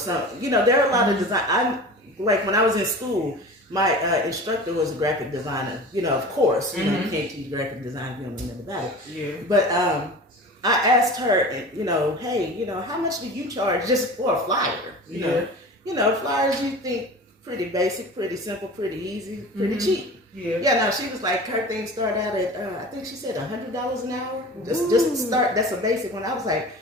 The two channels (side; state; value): both; normal; correlation 0.36